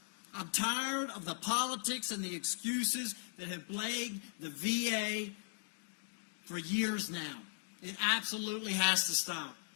I'm tired of the politics and the excuses that have plagued the VA for years now. It absolutely has to stop.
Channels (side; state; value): right; silent; digital silence